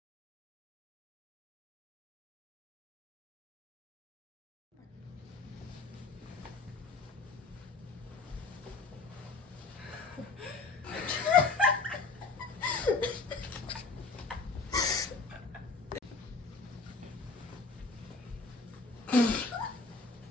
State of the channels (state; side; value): quieter; right; 3.9 dB